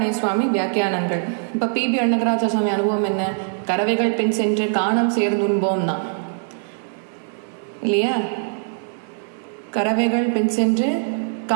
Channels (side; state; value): left; silent; digital silence